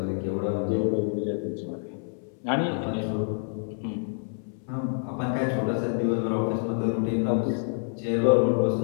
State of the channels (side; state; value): right; silent; 60 dB below the other